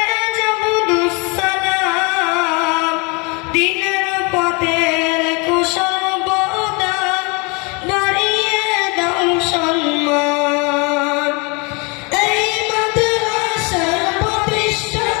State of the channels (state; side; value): quieter; right; 30.3 dB